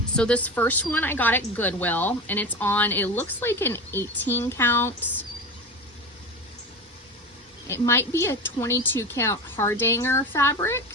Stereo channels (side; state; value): both; normal; correlation 0.27